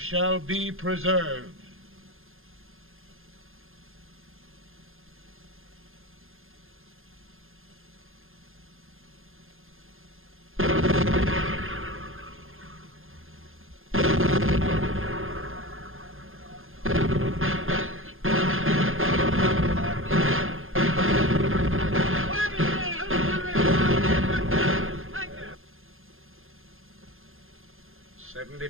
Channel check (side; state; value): left; late; 0.60 ms